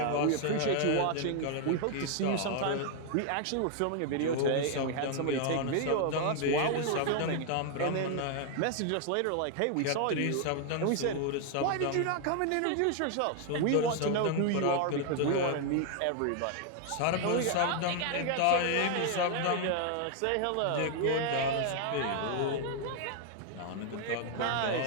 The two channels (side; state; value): both; different; correlation 0.00